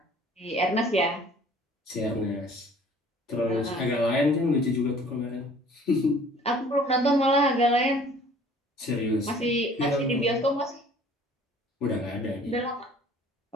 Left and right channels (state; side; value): normal; both; correlation 0.52